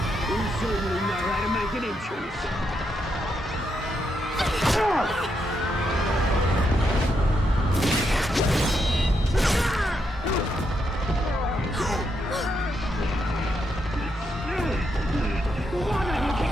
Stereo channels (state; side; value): normal; both; correlation 0.80